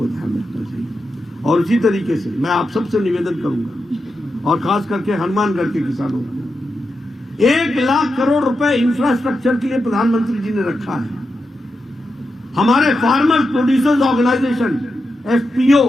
ध्यान रखना चाहिए। और इसी तरीके से मैं आप सबसे निवेदन करूंगा, और खास करके हनुमानगढ़ के किसानों को, 1 लाख करोड़ रुपए इंफ्रास्ट्रक्चर के लिए प्रधानमंत्री जी ने रखा है। हमारे फार्मर्स प्रोड्यूसर्स ऑर्गेनाइजेशन FPO,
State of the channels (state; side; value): normal; both; correlation 0.88